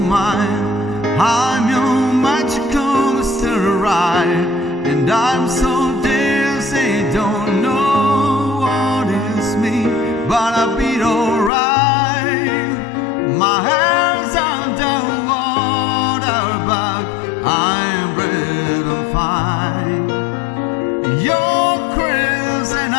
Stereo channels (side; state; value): right; drops out; at 11.5 s